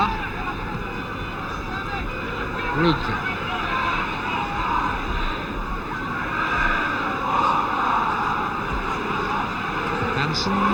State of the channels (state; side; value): identical; both; correlation 1.00